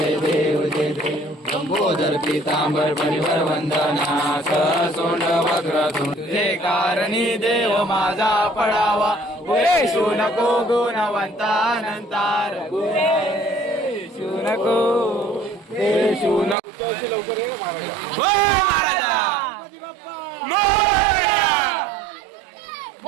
देव जय देव. लंबोदर पीतांबर परिवर वंदना. सोंड वक्र तुझे कारणी देव माझा पडावा. गुरेशू नको गुणवंता अनंतार. गुरेशू नको देशू नको. लवकर ये महाराजा. मोरया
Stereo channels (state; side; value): drops out; left; at 16.6 s